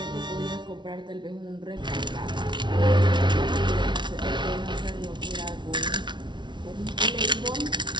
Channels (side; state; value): left; late; 0.23 ms